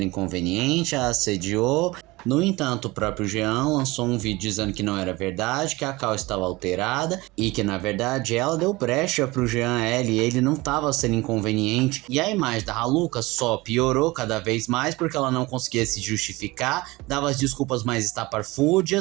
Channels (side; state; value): left; quieter; 21.7 dB